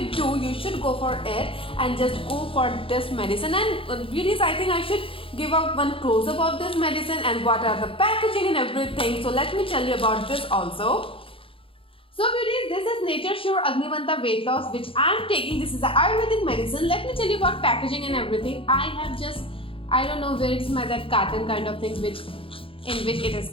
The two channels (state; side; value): late; right; 0.26 ms